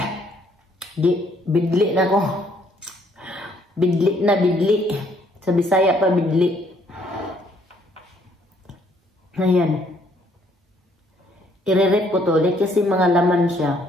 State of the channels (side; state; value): both; normal; correlation 0.66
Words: Bidli na ko. Bidli. Sa Bisaya pa bidli. Ayan. Irerep ko to ulit kasi mga laman